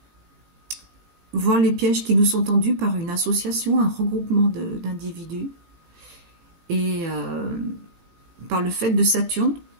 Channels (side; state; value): left; late; 18 ms